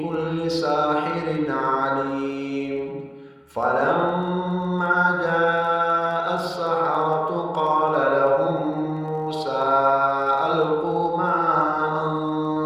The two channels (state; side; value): identical; both; correlation 1.00